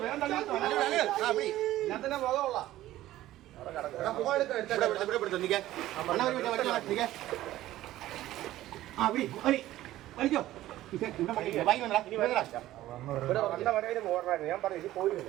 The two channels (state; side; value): quieter; left; 14.9 dB